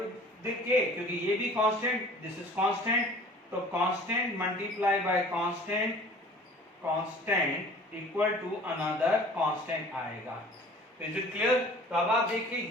k, क्योंकि ये भी कांस्टेंट, दिस इज कांस्टेंट, तो constant multiply by constant, constant equal to another constant आएगा। Is it clear? तो अब आप देखिए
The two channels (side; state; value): both; normal; correlation 0.47